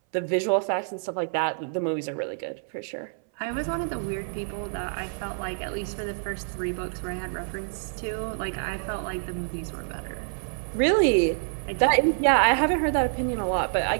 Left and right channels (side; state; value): left; silent; 60 dB below the other